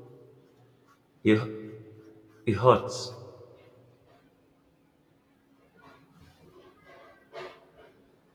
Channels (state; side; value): identical; both; correlation 1.00